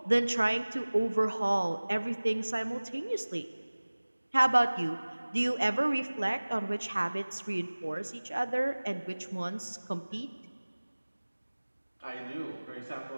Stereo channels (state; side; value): inverted; both; correlation -1.00